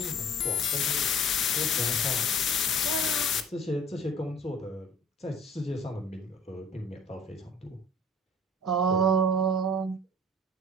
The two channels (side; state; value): both; normal; correlation 0.48